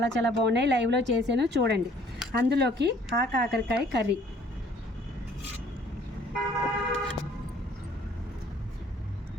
చాలా బాగున్నాయి. లైవ్లో చేశాను చూడండి. అందులోకి కాకరకాయ కర్రీ,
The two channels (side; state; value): both; normal; correlation 0.58